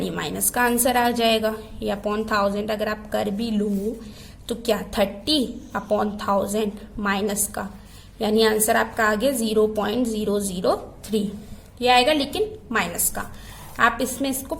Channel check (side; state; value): both; identical; correlation 1.00